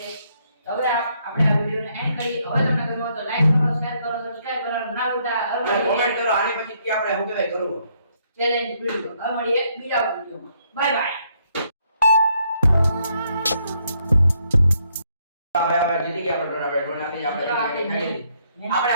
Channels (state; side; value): inverted; both; correlation -0.72